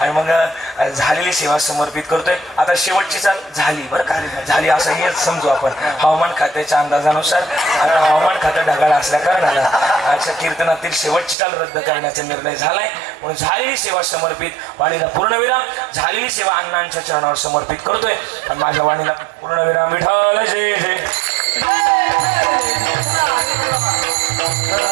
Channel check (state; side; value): drops out; left; at 11.4 s